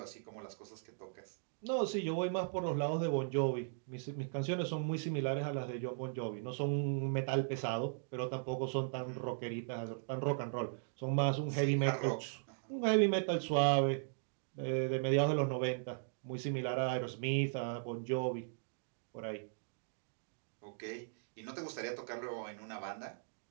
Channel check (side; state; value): left; silent; digital silence